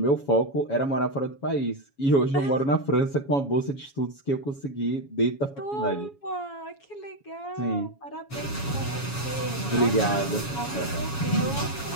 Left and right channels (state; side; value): late; right; 7.2 ms